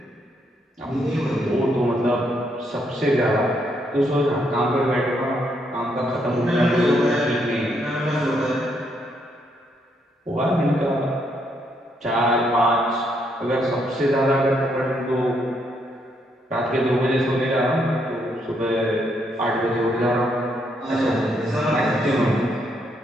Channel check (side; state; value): both; normal; correlation 0.75